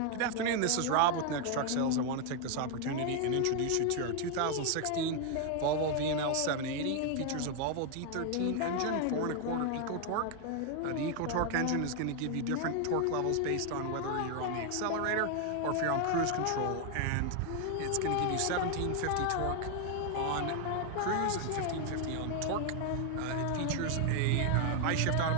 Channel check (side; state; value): both; different; correlation 0.01